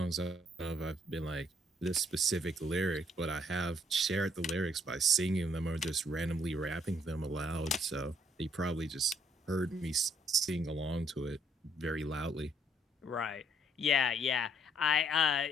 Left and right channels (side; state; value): both; normal; correlation 0.67